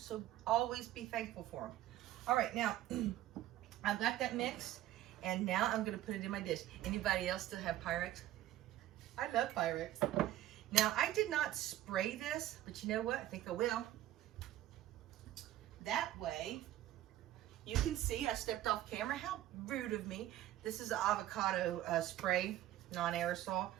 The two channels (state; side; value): quieter; left; 13.9 dB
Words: always be thankful for them. All right, now I've got that mixed, and now I'm going to put it in my dish. Anybody else still have Pyrex? I love Pyrex. Now, I did not spray this, but you know what? I think I will. That way, you can see I stepped off camera. How rude of me. This is an avocado spray, non-aerosol.